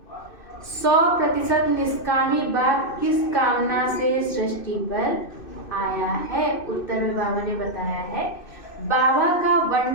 100% निष्कामी बाप किस कामना से सृष्टि पर आया है? उत्तर में बाबा ने बताया है, बाबा का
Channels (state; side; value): late; right; 2.6 ms